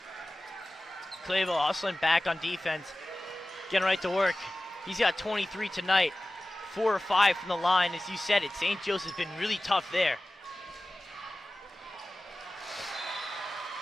Clayville hustling back on defense, getting right to work. He's got 23 tonight, 4 or 5 from the line. As you said it, St. Joe's has been really tough there.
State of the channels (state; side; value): normal; both; correlation 0.97